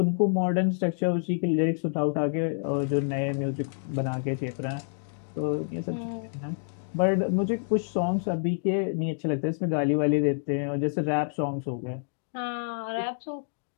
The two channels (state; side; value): silent; right; digital silence